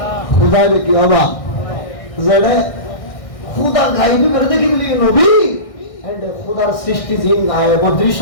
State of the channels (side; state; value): right; late; 1.6 ms